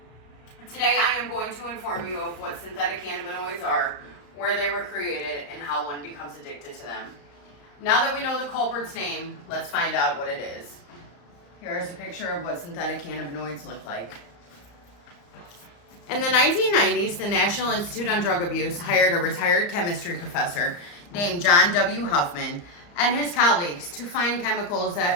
Today, I am going to inform you of what synthetic cannabinoids are, where they were created, and how one becomes addicted to them. Now that we know the culprit's name, let's find out what it is. Here is a picture of what synthetic cannabinoids look like. In the 1990s, the National Institute on Drug Abuse hired a retired chemistry professor named John W. Huffman and his colleagues to find chemicals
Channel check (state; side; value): late; right; 34 ms